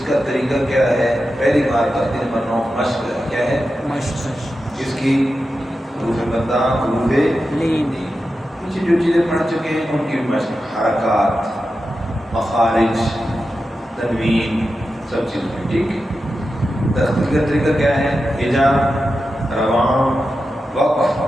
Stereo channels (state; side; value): normal; both; correlation 0.91